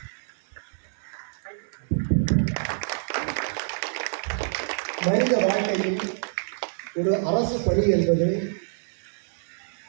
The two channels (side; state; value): left; silent; digital silence